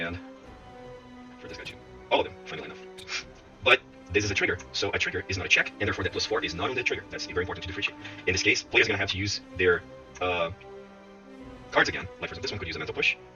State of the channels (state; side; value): identical; both; correlation 1.00